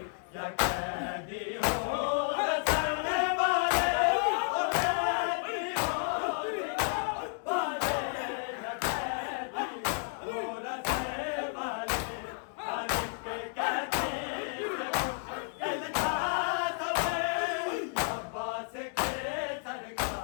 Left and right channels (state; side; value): silent; right; 56 dB below the other